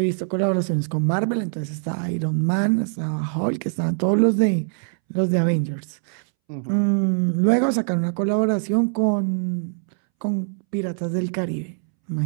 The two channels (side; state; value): left; silent; 64 dB below the other